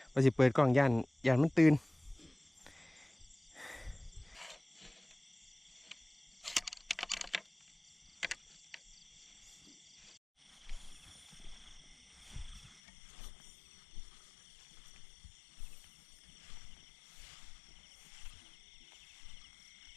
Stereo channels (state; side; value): drops out; right; at 12.8 s